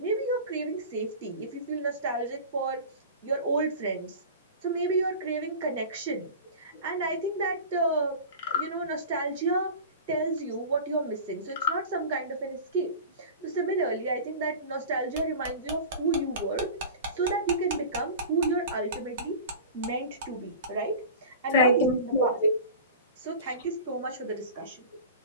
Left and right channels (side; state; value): both; inverted; correlation -0.35